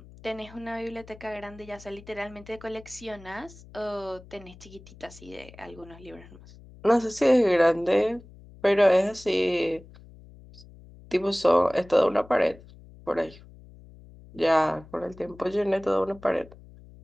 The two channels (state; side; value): noise; left; hum, 21 dB below the sound